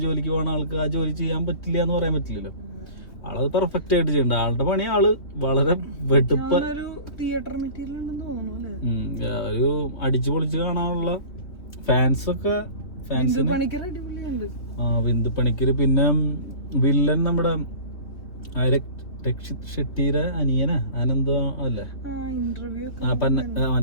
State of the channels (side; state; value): right; late; 3.2 ms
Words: ജോലിക്ക് പോകണ ആൾക്ക് ആ ജോലി ചെയ്യാൻ പറ്റില്ല എന്ന് പറയാൻ പറ്റില്ലല്ലോ. ആളത് പെർഫെക്റ്റ് ആയിട്ട് ചെയ്യണ്ട. ആളുടെ പണി ആള് വളരെ വെടുപ്പ്. തിയേറ്റർ മെറ്റീരിയൽ ഉണ്ടെന്ന് തോന്നുന്നു അല്ലേ. ഒരു അടിച്ചു പൊളിച്ച് കാണാനുള്ള ഫാൻസൊക്കെ. അടിപൊളിയുണ്ട്. ബിന്ദു പണിക്കര്. പിന്നെ വില്ലൻ നമ്മുടെ രക്ഷിത് ഷെട്ടിയുടെ അനിയനാ അനന്തോ അല്ലേ,